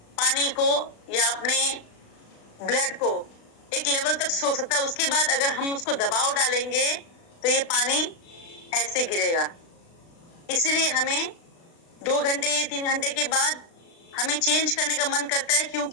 पानी को या अपने ब्लड को एक लेवल तक सोख सकता है। उसके बाद अगर हम उसको दबाव डालेंगे तो ये पानी ऐसे गिरेगा। इसलिए हमें 2 घंटे 3 घंटे के बाद हमें चेंज करने का मन करता है,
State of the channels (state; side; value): late; right; 36 ms